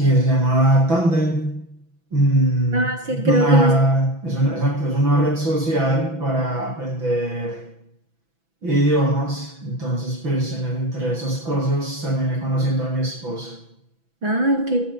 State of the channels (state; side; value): late; left; 6.0 ms